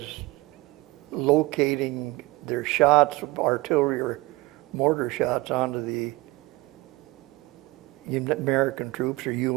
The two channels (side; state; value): left; quieter; 22.1 dB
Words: locating their shots, artillery or mortar shots onto the American troops or